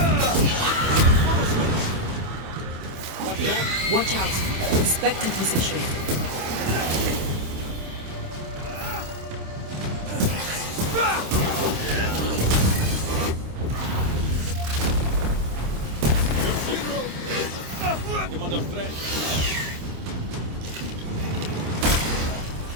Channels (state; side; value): late; left; 26 ms